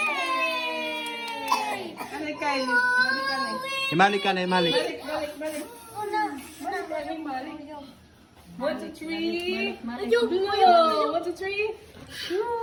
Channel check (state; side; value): identical; both; correlation 1.00